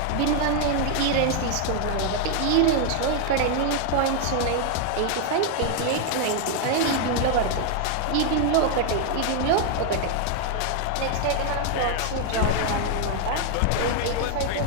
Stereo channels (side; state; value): both; different; correlation 0.00